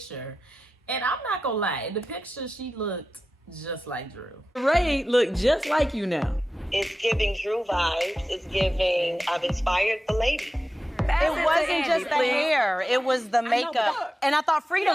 And I'm not gonna lie, in the picture she looked just like Drew. Sheree look just like you now. It's giving Drew vibes. It's giving, I've inspired the lady. It wasn't just the hair, it was the makeup. And I thought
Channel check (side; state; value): both; normal; correlation 0.93